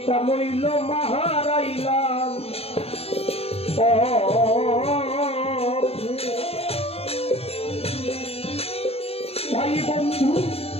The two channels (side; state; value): right; late; 0.29 ms